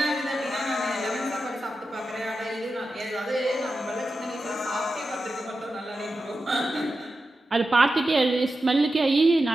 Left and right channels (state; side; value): normal; both; correlation 0.91